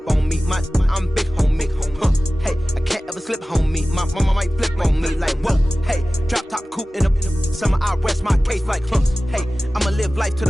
on me. I'm big homie, hey, I can't ever slip homie. My mama might flip on me. Like, whoa, hey, drop top coupe in the summer, I rest my case. Like, hey, I'ma live life to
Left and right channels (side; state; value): both; normal; correlation 0.97